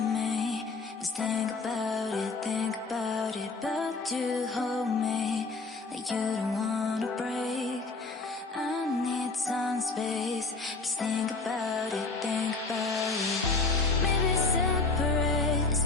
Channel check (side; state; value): right; quieter; 3.7 dB